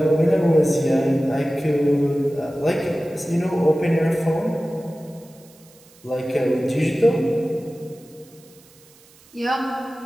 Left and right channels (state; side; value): noise; right; hiss, 27 dB below the sound